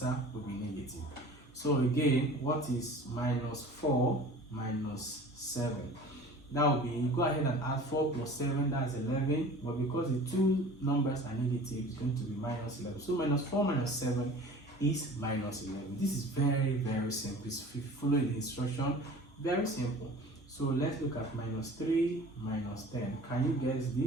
will be negative. So again, what is minus 4 minus 7? That will be, go ahead and add 4 plus 7, that's 11, but because the two numbers are negative, it's going to be minus 11. So minus 4 minus 7 is minus 11. This is very, very simple. If you follow the instruction, very simple. So let's look at minus 3 minus 10. Can you guess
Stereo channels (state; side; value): normal; both; correlation 0.42